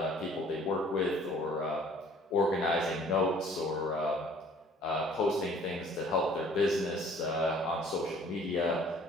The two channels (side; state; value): both; normal; correlation 0.54